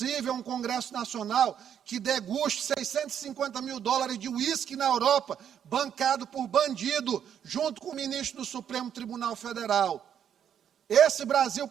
um Congresso Nacional que deguste $650 mil de uísque na Europa, bancado por bandido, junto com o ministro do Supremo Tribunal Federal. Esse Brasil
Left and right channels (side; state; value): left; quieter; 9.0 dB